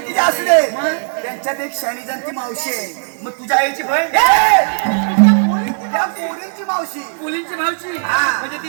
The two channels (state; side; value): silent; left; digital silence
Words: असू दे. त्यांच्यात एक शाणी जाणती मावशी आहे. मग तुझ्या आईची बहीण त्या पोरींची मावशी. मुलींची भावची हा. म्हणजे